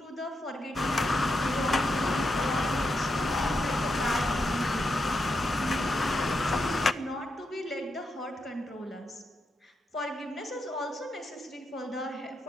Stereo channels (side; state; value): both; normal; correlation 0.84